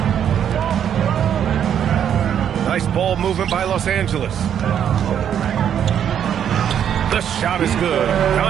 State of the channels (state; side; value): quieter; left; 9.1 dB